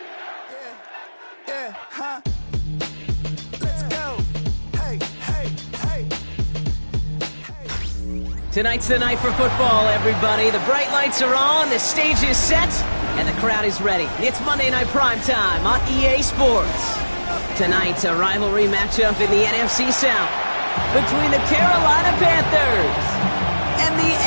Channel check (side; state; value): both; inverted; correlation -1.00